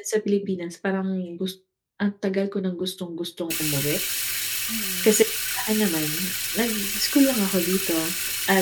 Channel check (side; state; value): both; identical; correlation 1.00